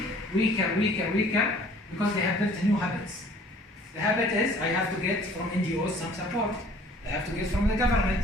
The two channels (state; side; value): normal; both; correlation 0.53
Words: weaker because they have built new habits. The habit is, I have to get from NGOs some support. I have to get from the government,